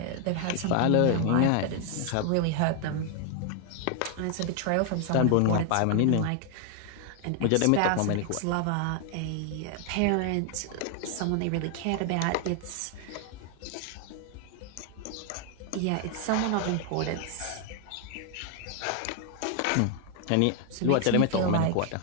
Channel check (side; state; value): both; different; correlation 0.00